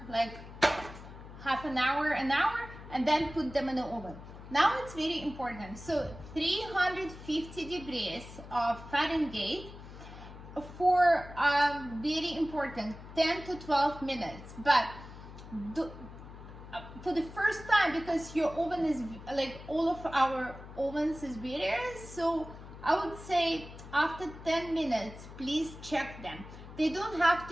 like half an hour, and then put them in the oven. Now it's very important. So 350 degrees of Fahrenheit for very important 10 to 12 minutes. But for the first time, because your oven is like all of our ovens is various, so I would say after 10 minutes, please check them. They don't have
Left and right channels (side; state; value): left; noise; hum, 15 dB below the sound